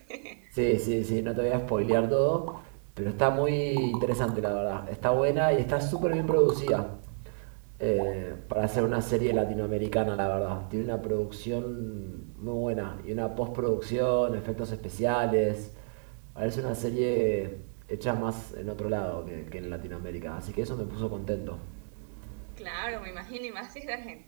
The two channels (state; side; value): silent; left; digital silence